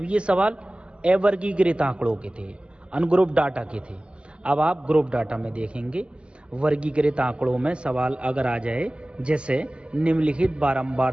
ये सवाल अवर्गीकृत आंकड़ों के थे, अनग्रुप डाटा के थे। अब आप ग्रुप डाटा में देखेंगे वर्गीकृत आंकड़ों में सवाल अगर आ जाए जैसे निम्नलिखित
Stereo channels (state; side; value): late; left; 0.054 ms